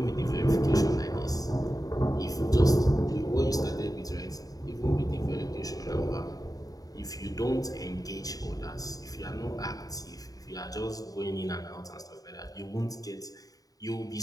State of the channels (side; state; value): right; late; 0.18 ms